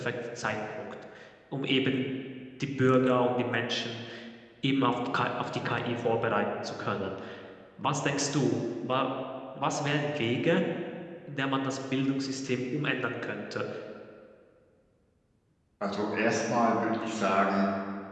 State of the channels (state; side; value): identical; both; correlation 1.00